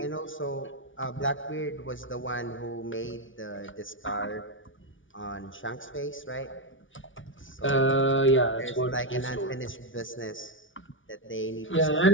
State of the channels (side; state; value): right; late; 0.56 ms